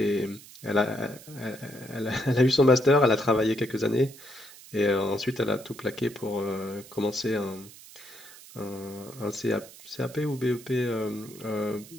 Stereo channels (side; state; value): right; noise; hiss, 19 dB below the sound